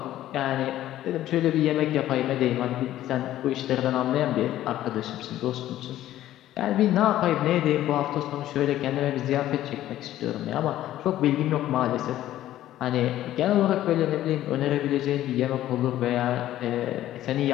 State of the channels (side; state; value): right; quieter; 13.4 dB